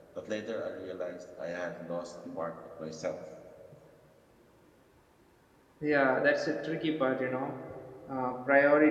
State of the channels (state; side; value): identical; both; correlation 1.00